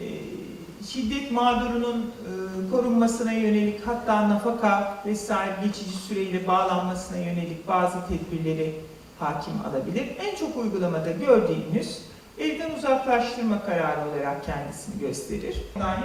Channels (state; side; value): identical; both; correlation 1.00